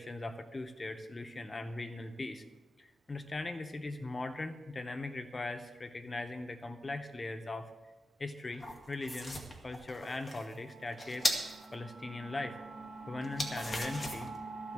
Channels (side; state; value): both; normal; correlation 0.92